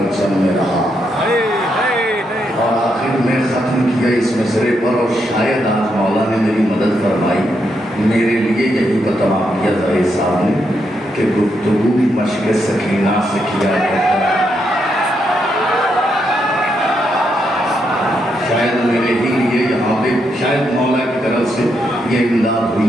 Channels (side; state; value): both; normal; correlation 0.80